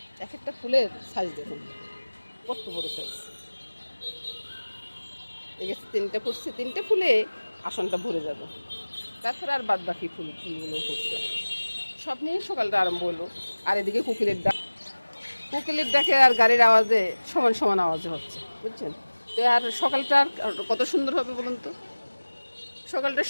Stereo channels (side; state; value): both; inverted; correlation -1.00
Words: এক একটা ফুলের সাইজ দেখুন কত বড় সাইজ। এই গাছে 3টে পড়ছে, 3টে ফুলে আসনটা ভরে যাবে। তারপরে আর বাদ বাকি ফুলগুলো পড়ছে, সব নিয়ে সকালটা আরম্ভ হলো। আর এদিকে কোকিলের ডাকে আর গাড়ির আওয়াজে সমান সমান আওয়াজে হচ্ছে, বুঝছেন তো। আর সকালটা আর কত সুন্দর হবে বলুন তো। সকালটা